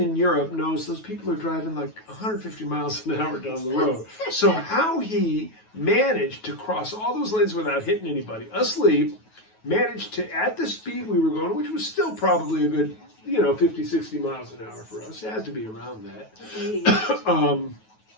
in Europe knows those people are driving like 150 miles an hour down the road. So how he managed to cross all those lanes without hitting anybody, asleep, managed to, at the speed we were going, which was still probably a good, 50, 60 miles an hour for us. It has to be around that.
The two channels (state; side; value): late; right; 9.3 ms